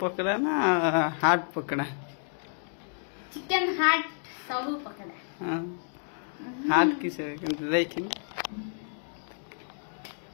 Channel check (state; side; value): silent; right; 58 dB below the other